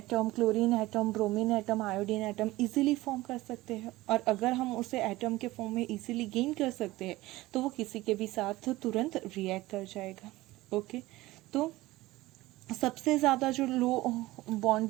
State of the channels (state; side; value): quieter; left; 18.4 dB